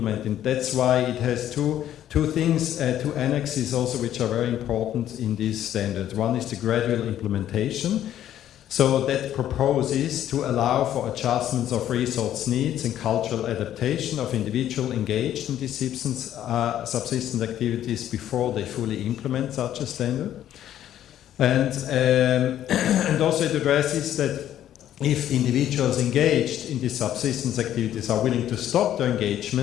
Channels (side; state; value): right; quieter; 11.5 dB